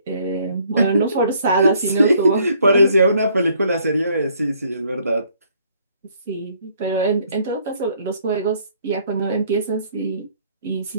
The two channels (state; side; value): inverted; both; correlation -0.63